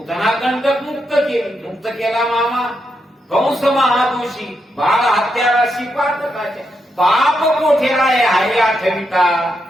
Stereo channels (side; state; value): both; normal; correlation 0.82